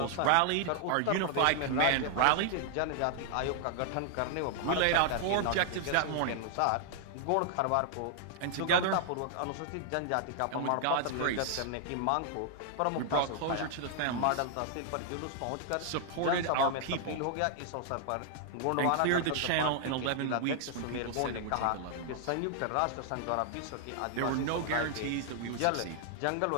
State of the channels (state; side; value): different; both; correlation 0.00